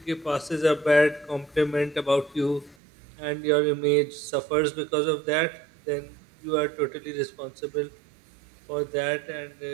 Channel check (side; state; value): left; drops out; at 2.8 s